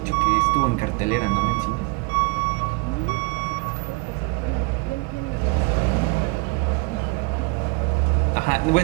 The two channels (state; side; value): quieter; left; 28.3 dB